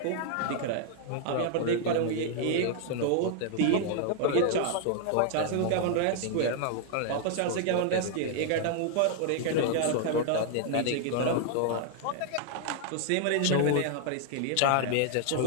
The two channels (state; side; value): different; both; correlation 0.00